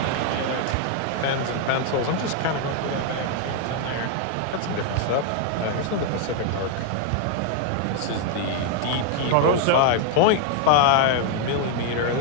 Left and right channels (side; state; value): both; different; correlation 0.00